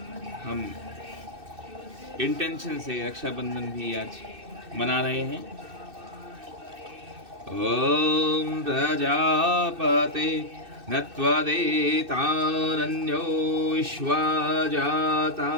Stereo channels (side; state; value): left; late; 2.6 ms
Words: हम इंटेंशन से रक्षाबंधन भी आज मना रहे हैं। ओम प्रजापते नत्वदेतानन्यो विश्वा